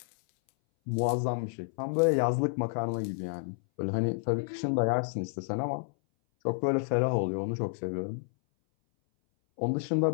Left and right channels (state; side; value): silent; right; 58 dB below the other